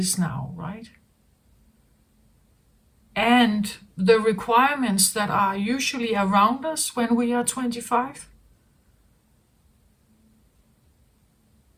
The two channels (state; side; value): identical; both; correlation 1.00